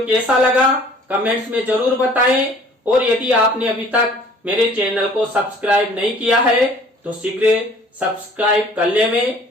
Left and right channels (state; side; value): normal; both; correlation 0.53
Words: कैसा लगा कमेंट्स में जरूर बताएं, और यदि आपने अभी तक मेरे चैनल को सब्सक्राइब नहीं किया है तो शीघ्र सब्सक्राइब कर लें।